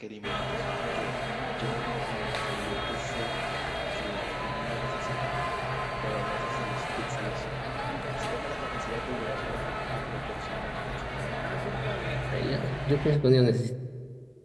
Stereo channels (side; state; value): both; identical; correlation 1.00